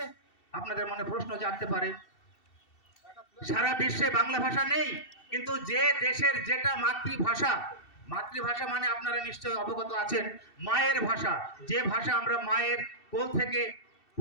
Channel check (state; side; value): late; right; 2.7 ms